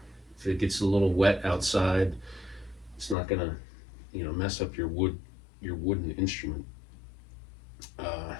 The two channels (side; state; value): right; drops out; at 3.2 s